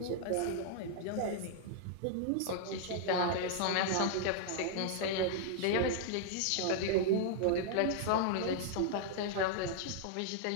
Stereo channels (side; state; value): both; different; correlation -0.01